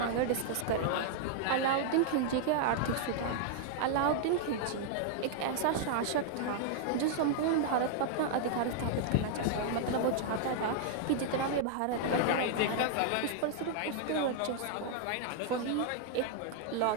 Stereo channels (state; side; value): different; both; correlation -0.01